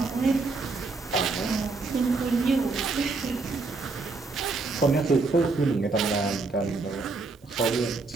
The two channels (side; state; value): left; quieter; 3.9 dB